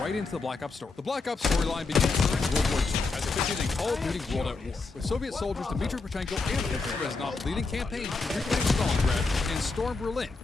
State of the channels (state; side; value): quieter; right; 4.0 dB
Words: into the Black Ops story. The Black Ops storyline begins during World War II, as depicted in Call of Duty World at War, with Soviet soldiers Dmitry Petrenko and Viktor Reznov leading campaigns to reclaim Stalingrad and storm Berlin,